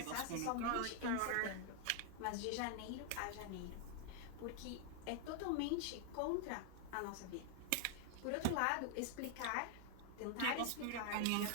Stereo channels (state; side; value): different; both; correlation 0.00